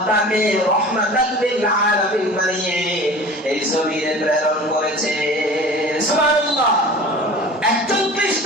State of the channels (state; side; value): normal; both; correlation 0.39